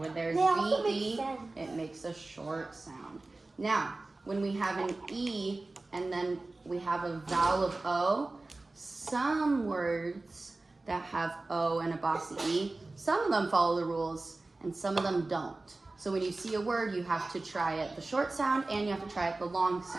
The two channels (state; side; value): quieter; left; 3.2 dB